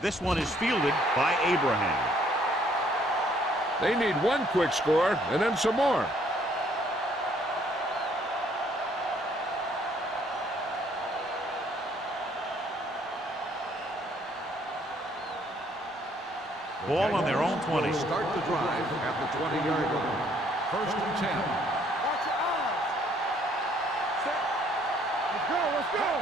This one is fielded by Abraham. They need one quick score and then some more. Ball on their own 20. Start the drive at the 20-yard line. 1st and 10. Watch your eyes. Set. Let's go.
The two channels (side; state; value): both; normal; correlation 0.64